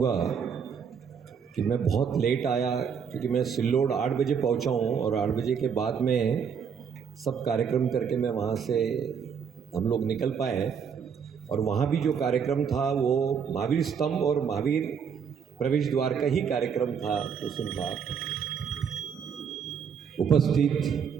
कि मैं बहुत लेट आया, क्योंकि मैं सिल्लोड 8 बजे पहुँचा हूँ और 8 बजे के बाद में सब कार्यक्रम करके मैं वहाँ से हम लोग निकल पाए। और वहाँ भी जो कार्यक्रम था वो महावीर स्तंभ और महावीर प्रवेश द्वार का ही कार्यक्रम था। उस दिन था उपस्थित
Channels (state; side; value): quieter; left; 6.9 dB